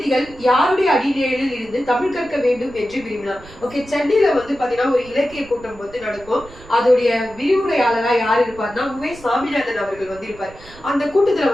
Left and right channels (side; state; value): right; noise; rumble, 21 dB below the sound